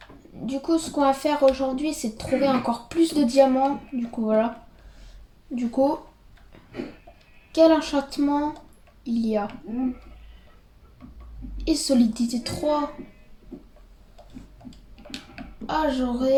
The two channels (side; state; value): both; identical; correlation 1.00